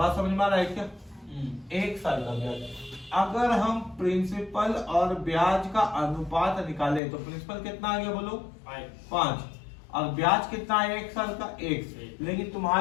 समझ में आ रहा है क्या? 1 साल का ब्याज। अगर हम प्रिंसिपल और ब्याज का अनुपात निकाले तो प्रिंसिपल कितना आ गया? बोलो 5, और ब्याज कितना है 1 साल का? 1। लेकिन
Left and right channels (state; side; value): drops out; right; at 7.0 s